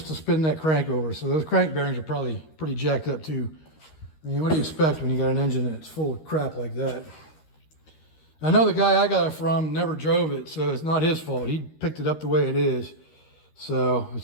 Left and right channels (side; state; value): right; late; 13 ms